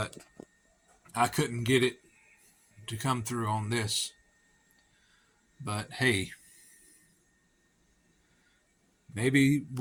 I couldn't get it to come through on this. But hey, maybe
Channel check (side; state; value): both; identical; correlation 1.00